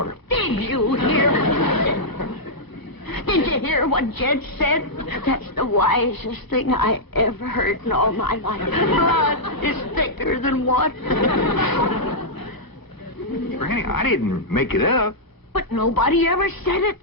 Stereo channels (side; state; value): right; late; 1.1 ms